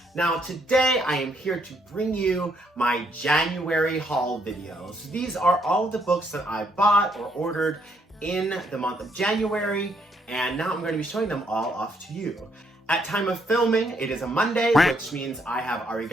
Now today I am here to bring you my January haul videos. These are all of the books that I bought or ordered in the month of January, and now I'm going to be showing them all off to you. At time of filming, it is a Monday, which means I have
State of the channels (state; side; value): normal; both; correlation 0.72